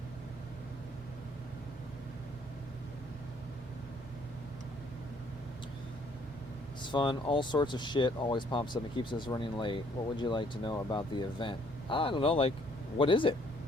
It's fun. All sorts of shit always pops up and keeps us running late. What would you like to know about the event? I don't know, like, what is it?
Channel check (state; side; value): normal; both; correlation 0.63